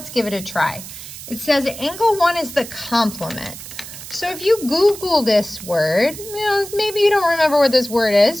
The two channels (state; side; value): noise; right; hiss, 13 dB below the sound